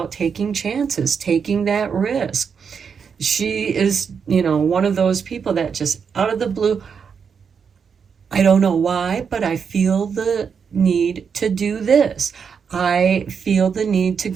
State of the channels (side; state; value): left; quieter; 6.4 dB